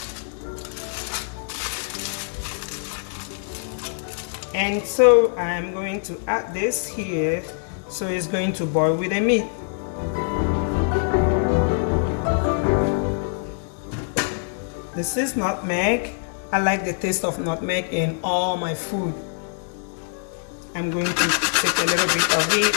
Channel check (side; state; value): right; silent; digital silence